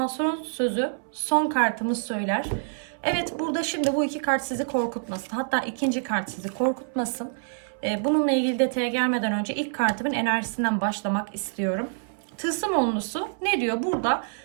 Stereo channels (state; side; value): silent; left; 61 dB below the other